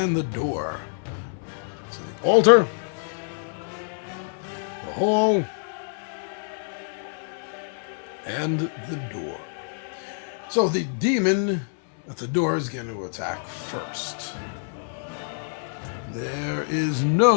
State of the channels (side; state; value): right; silent; 61 dB below the other